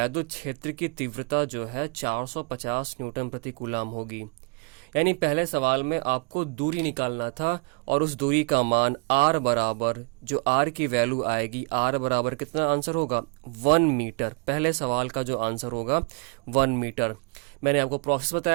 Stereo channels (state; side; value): quieter; left; 33.3 dB